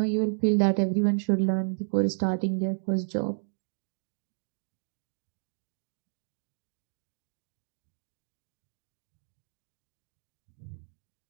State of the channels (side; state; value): left; silent; digital silence